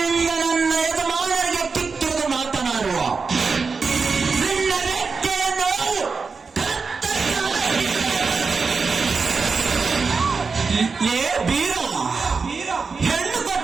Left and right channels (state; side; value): quieter; left; 4.8 dB